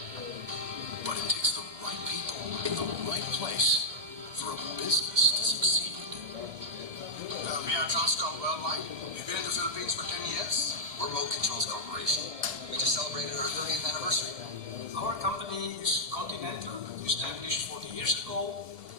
But it takes the right people in the right place for a business to succeed. We are Transcom Worldwide. We've been in the Philippines for 10 years. We're Remote Controls Corporation. We just celebrated our 30th anniversary. Our company is Continental, established 40 years ago.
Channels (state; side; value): late; left; 2.3 ms